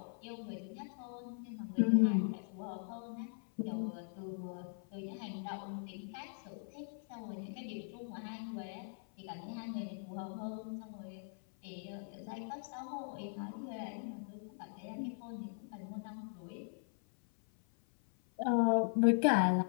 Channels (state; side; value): silent; right; 51 dB below the other